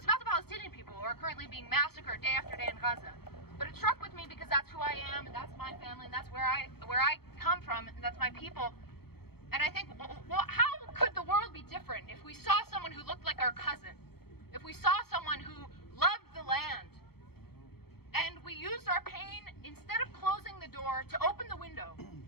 about the Palestinian people who are currently being massacred day after day in Gaza. But it struck with me because that's who I am, and that's my family, and that's where I come from, and that's my people. And I think, well, how could the world be different if we saw someone who looked like our cousin? If we saw someone who loved the land? And we used our pain, instead of closing the door, to open the window.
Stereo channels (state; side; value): late; right; 0.96 ms